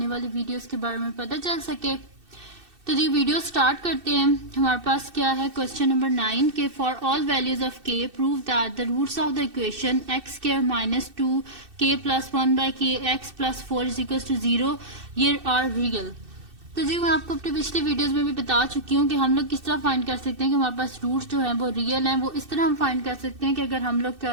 वाली वीडियोस के बारे में पता चल सके। तो जी वीडियो स्टार्ट करते हैं। हमारे पास क्या है क्वेश्चन नंबर 9 के for all values of k prove that the roots of the equation x square minus 2 k plus 1 by k x plus 4 is equal to 0 ये आर रियल। तो जी मैं आपको अपनी पिछली वीडियोस में भी बता चुकी हूँ कि हम लोग किस तरह फाइंड कर सकते हैं कि हमारे पास रूट्स जो है वो रियल हैं। वो इस तरह हम फाइंड कर सकते हैं कि अगर हम लोग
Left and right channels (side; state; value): left; late; 2.6 ms